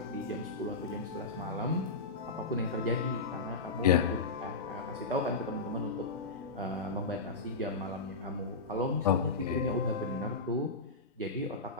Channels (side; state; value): right; quieter; 3.7 dB